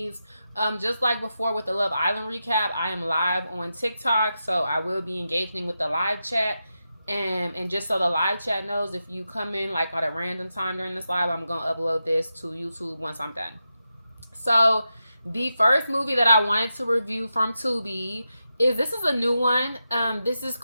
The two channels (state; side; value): inverted; both; correlation -0.89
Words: Just like before with the Love Island recap, I am live on TikTok, so I will be engaging with the live chat. And just so the live chat knows, if you come in like at a random time during this live, I'm gonna upload this to YouTube once I'm done. So the first movie that I wanted to review from Tubi this is a new one. This is